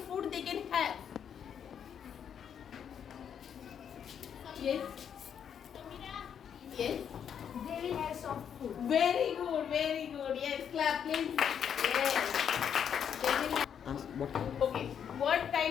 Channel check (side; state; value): right; quieter; 8.2 dB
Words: food they can have? Yes. Yes. They will have soft food. Very good, very good. Yes, clap please. Yes. They will have. Okay, what